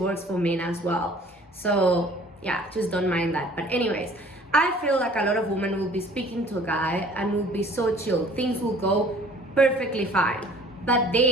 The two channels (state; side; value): normal; both; correlation 0.52